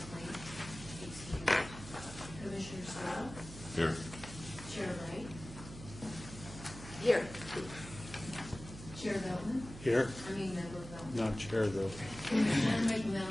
Plain? Excused. Commissioner Stroh? Here. Chair Wright? Here. Chair Belton? Here. Member Belton. Not chair, though. Commissioner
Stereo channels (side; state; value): right; noise; hum, 13 dB below the sound